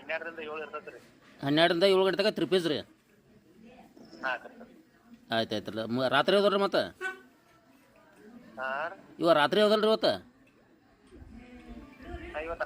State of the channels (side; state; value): both; identical; correlation 1.00